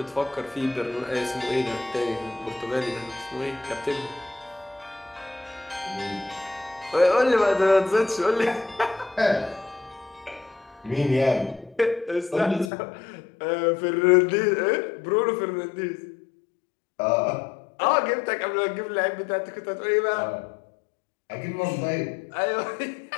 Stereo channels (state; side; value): drops out; right; at 12.7 s